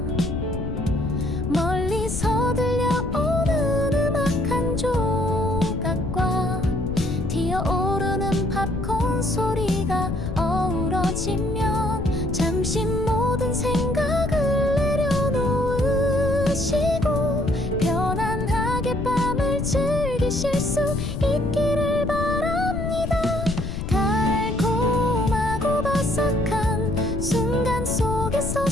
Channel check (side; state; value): left; noise; rumble, 5 dB below the sound